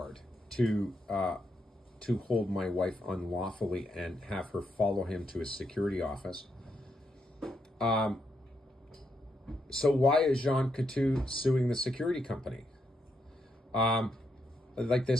to hold my wife unlawfully and have her follow him to his security office. So why is Jean Coutu suing the security company?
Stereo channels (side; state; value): both; normal; correlation 0.80